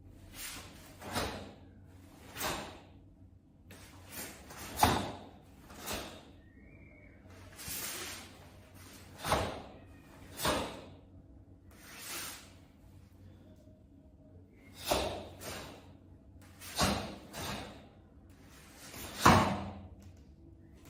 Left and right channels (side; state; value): both; identical; correlation 1.00